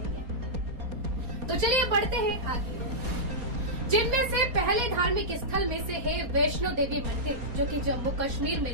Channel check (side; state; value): left; late; 4.2 ms